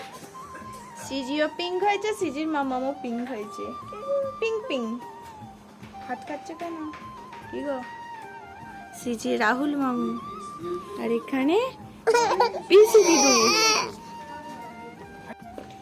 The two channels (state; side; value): identical; both; correlation 1.00